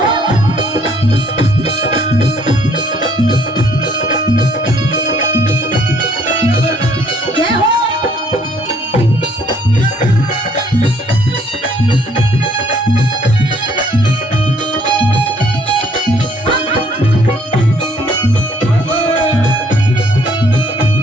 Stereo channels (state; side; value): normal; both; correlation 0.63